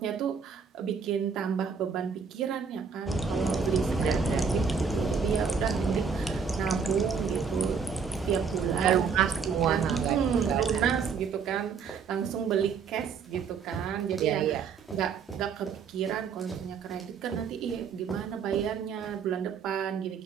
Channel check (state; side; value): quieter; left; 6.1 dB